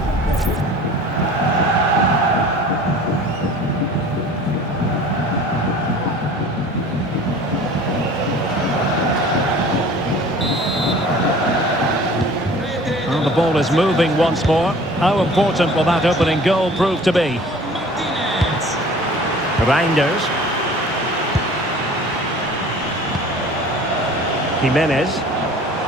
Well, the ball is moving once more. How important will that opening goal prove to be? Reinders. Jimenez.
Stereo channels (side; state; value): both; normal; correlation 0.46